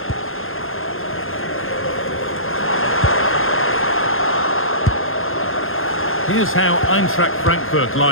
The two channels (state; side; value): late; right; 0.60 ms